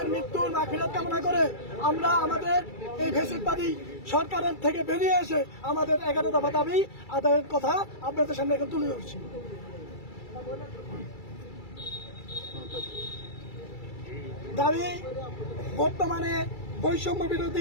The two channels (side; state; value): right; late; 2.3 ms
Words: মৃত্যুর মাগফিরাত কামনা করে আমরা আমাদের এই ফ্যাসিবাদী সরকারের থেকে বেরিয়ে এসে আমাদের 11 দফা দাবি আদায়ের কথা আপনাদের সামনে এখন তুলে ধরছি। দাবি বর্তমানে বৈষম্য